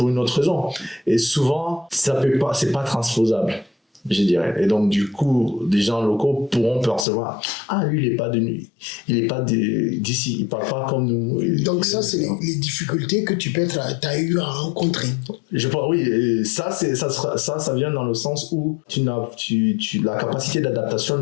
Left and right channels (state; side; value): drops out; right; at 7.1 s